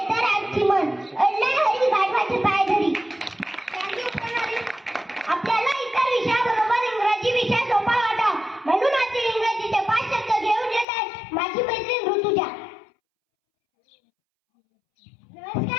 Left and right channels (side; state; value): right; drops out; at 10.9 s